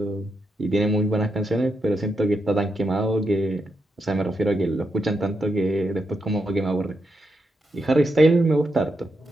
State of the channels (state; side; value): normal; both; correlation 0.84